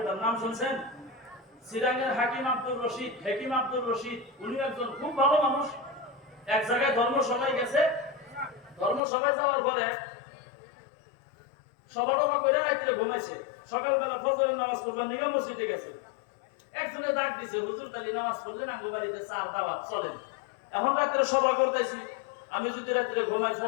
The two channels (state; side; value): drops out; right; at 9.0 s